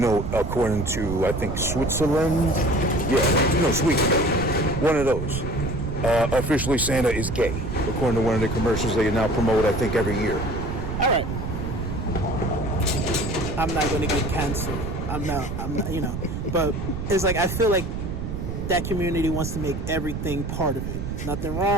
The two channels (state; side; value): noise; right; rumble, 5 dB below the sound